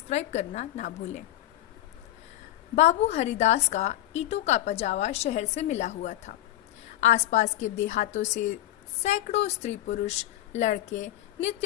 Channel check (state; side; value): quieter; right; 14.2 dB